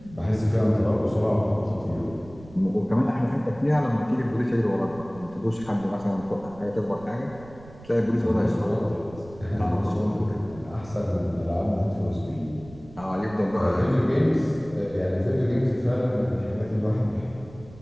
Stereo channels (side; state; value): right; noise; rumble, 19 dB below the sound